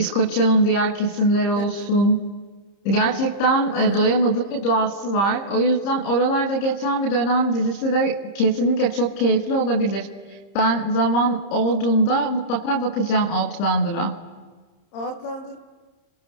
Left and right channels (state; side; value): late; right; 30 ms